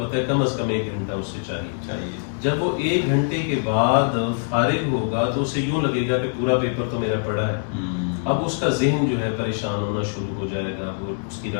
ہے کم از کم 1 گھنٹہ اس سے چاہیے. جب وہ 1 گھنٹے کے بعد فارغ ہوگا تو اسے یوں لگے گا کہ پورا پیپر تو میرا پڑا ہے. اب اس کا ذہن جو ہے پریشان ہونا شروع ہو جائے گا، وہ اس کی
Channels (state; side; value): silent; right; digital silence